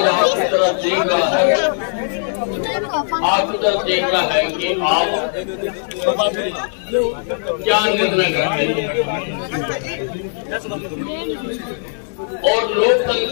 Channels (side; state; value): right; silent; 67 dB below the other